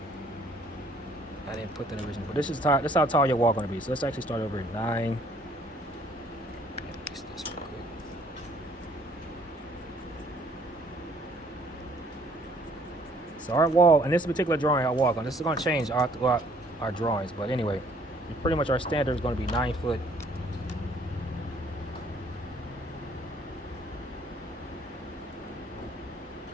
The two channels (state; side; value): normal; both; correlation 0.61